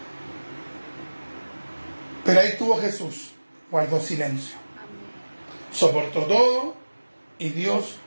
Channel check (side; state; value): both; inverted; correlation -1.00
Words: Pero ahí estuvo Jesús, guardó silencio, soportó todo y Dios,